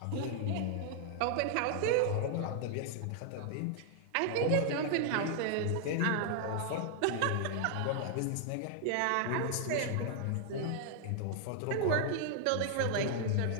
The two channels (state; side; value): different; both; correlation -0.01